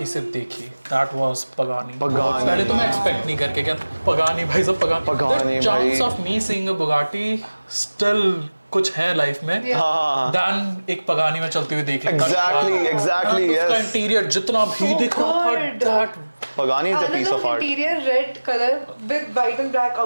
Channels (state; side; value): inverted; both; correlation -1.00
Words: से देखी. That was Pagani. Pagani. पहले तो मैं expect नहीं करके क्या Pagani भाई सब Pagani. Pagani The chance भाई. of me seeing a Bugatti still कुछ है लाइफ में. हाँ. Dan एक Pagani में चलते हुए देख लेता. Exactly, उसका yes. इंटीरियर जितना भी So दिख रहा था good. that Pagani is a piece of art. Interior red color with white and black